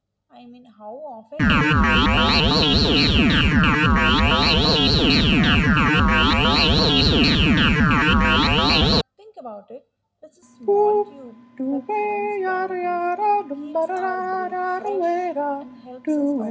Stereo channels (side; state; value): both; identical; correlation 1.00